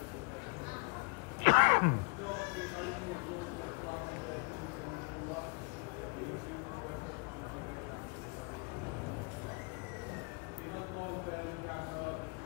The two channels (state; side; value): quieter; right; 31.1 dB